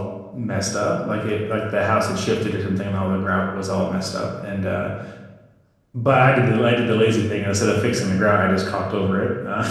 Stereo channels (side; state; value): both; identical; correlation 1.00